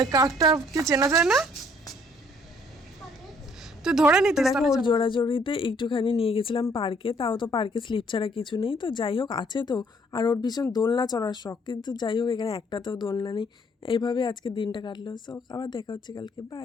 কাকটাকে চেনা যায় না? তো ধরে নিতে দেখো, ওর জোড়াজড়িতে একটুখানি নিয়ে গেছিলাম পার্কে। তাও তো পার্কে স্লিপ ছাড়া কিছু নেই, তো যাই হোক আছে তো। আর ওর ভীষণ দোলনা চড়ার শখ, কিন্তু যাই হোক এখানে একটাতেও দোলনা নেই। এইভাবে আজকে দিনটা কাটলো। সো আবার দেখা হচ্ছে কালকে,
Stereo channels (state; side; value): normal; both; correlation 0.63